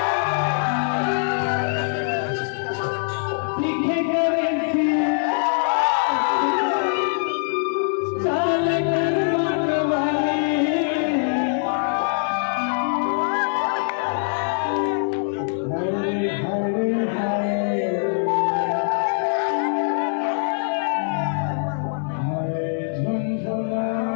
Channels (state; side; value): silent; right; 58 dB below the other